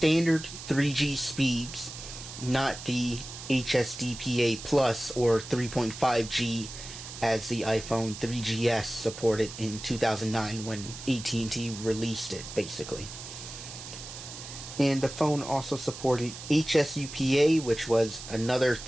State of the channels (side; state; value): right; noise; hiss, 12 dB below the sound